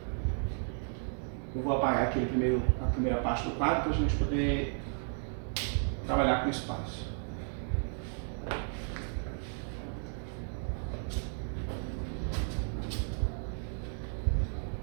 eu vou apagar aqui a primeira parte do quadro para a gente poder trabalhar com espaço.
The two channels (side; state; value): left; silent; 55 dB below the other